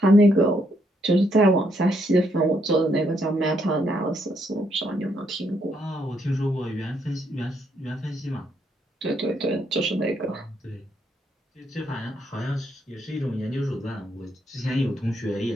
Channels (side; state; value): both; normal; correlation 0.74